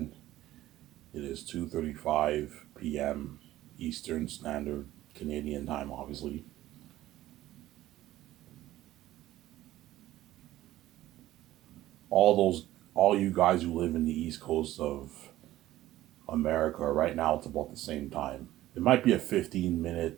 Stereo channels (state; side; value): quieter; left; 15.0 dB